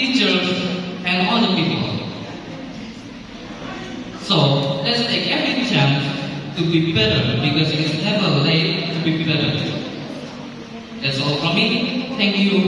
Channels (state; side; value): identical; both; correlation 1.00